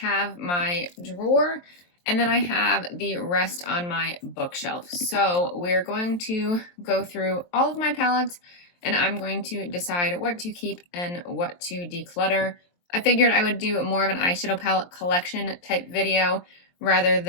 my drawer and then I have the rest on my bookshelf. So we're going to go through all of my palettes and I'm going to decide what to keep and what to declutter. I figured I would do more of an eyeshadow palette collection type video rather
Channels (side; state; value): right; late; 23 ms